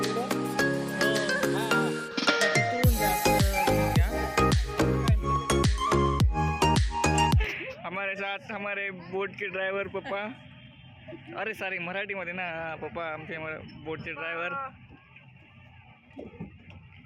हमारे साथ हमारे बोट के ड्राइवर पप्पा. अरे सॉरी मराठीमध्ये ना. पप्पा आमचे बोटचे ड्रायव्हर.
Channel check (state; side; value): identical; both; correlation 1.00